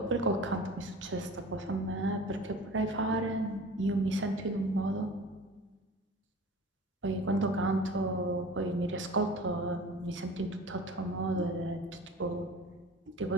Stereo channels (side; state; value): both; normal; correlation 0.40